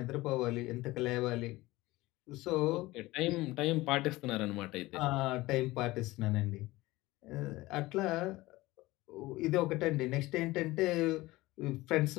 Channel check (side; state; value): right; quieter; 19.3 dB